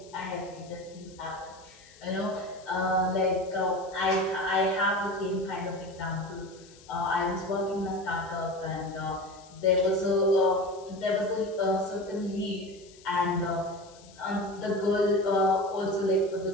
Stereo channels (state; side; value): noise; left; hiss, 24 dB below the sound